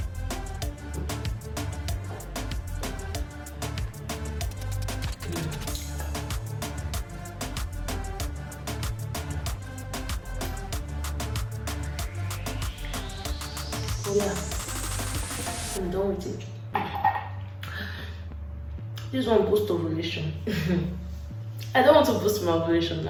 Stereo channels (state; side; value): identical; both; correlation 1.00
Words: Oh yeah, I'm done with it. This one boosts ovulation. I don't want to boost my ovulation